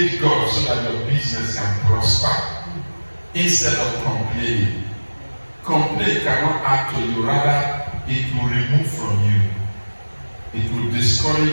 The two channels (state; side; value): inverted; both; correlation -1.00